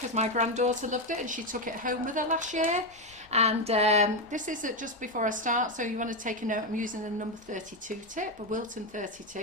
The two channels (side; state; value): both; normal; correlation 0.08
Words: my granddaughter loved it and she took it home with her last year. And this is just before I start, so you want to take a note, I'm using the number 32 tip, a Wilton